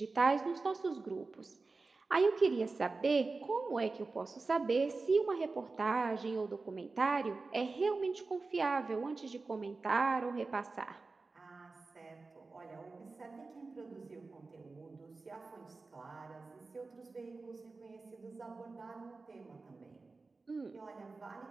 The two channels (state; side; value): quieter; left; 3.8 dB